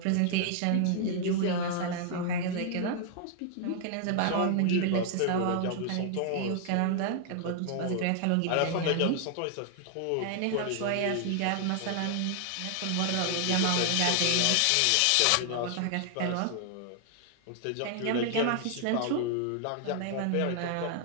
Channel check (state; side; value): different; both; correlation 0.00